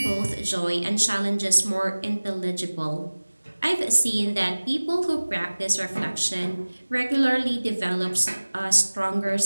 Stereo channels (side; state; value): both; inverted; correlation -1.00